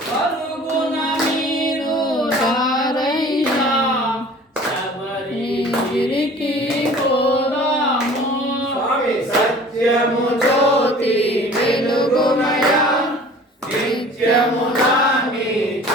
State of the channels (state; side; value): normal; both; correlation 0.46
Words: పరుగున మీరు రారయ్యా శబరిగిరికి పోదాము. స్వామి సత్యము జ్యోతి వెలుగుమయా నిత్యము దాన్ని